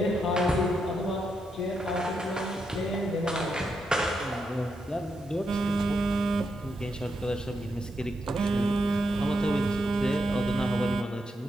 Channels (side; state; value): right; noise; hiss, 30 dB below the sound